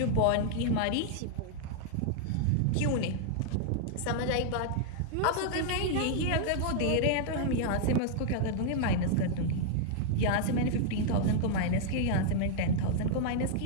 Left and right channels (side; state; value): both; different; correlation -0.01